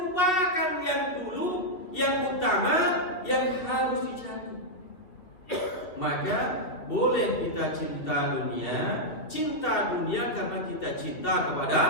yang dulu, yang utama, yang harus dicari. Maka boleh kita cinta dunia karena kita cinta kepada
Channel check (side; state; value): right; late; 3.0 ms